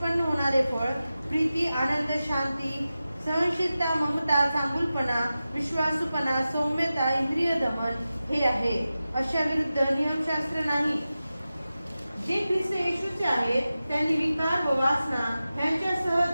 होणारे फळ प्रीती, आनंद, शांती, सहनशीलता, ममता, चांगुलपणा, विश्वासूपणा, सौम्यता, इंद्रिय दमन हे आहे. अशा विरुद्ध नियमशास्त्र नाही. जे ख्रिस्त येशूचे आहेत त्यांनी विकार व वासना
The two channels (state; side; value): inverted; both; correlation -0.94